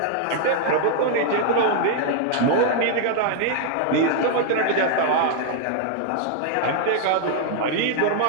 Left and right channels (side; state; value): both; different; correlation 0.00